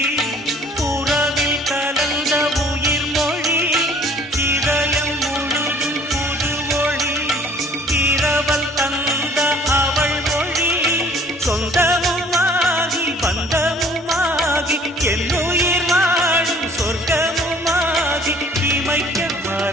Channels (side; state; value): both; normal; correlation 0.55